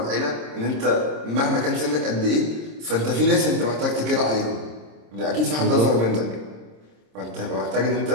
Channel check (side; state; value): left; late; 26 ms